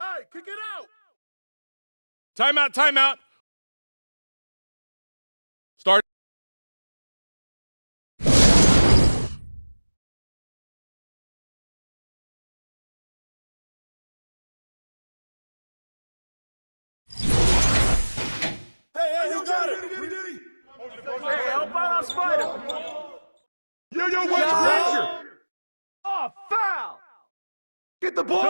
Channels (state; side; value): inverted; both; correlation -1.00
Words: kick it out. Timeout. Start. Hey, you got it. Hey, help out on Spider. Yo, watch Granger. Oh, foul. Get the